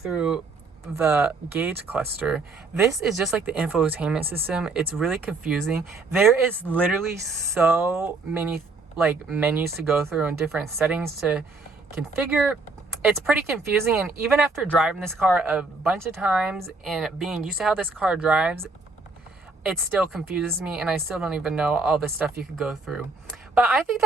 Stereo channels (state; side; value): quieter; left; 3.6 dB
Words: the gauge cluster. This is just like the infotainment system. It's really confusing. There is literally so many like menus to go through and different settings to configure. It's pretty confusing, and even after driving this car a bunch of times and being used to how this car drives, it still confuses me, and I still don't even know all the stuff you could go through. But I think